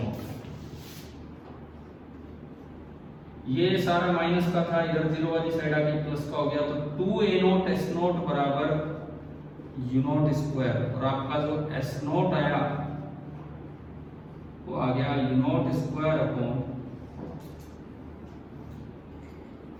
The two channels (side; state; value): both; identical; correlation 1.00